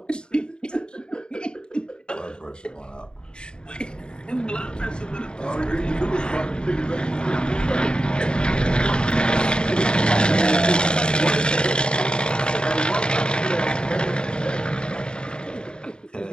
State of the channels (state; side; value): late; right; 0.049 ms